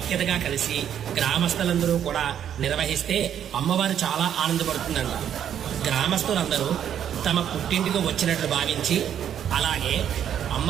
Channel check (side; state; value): left; quieter; 9.5 dB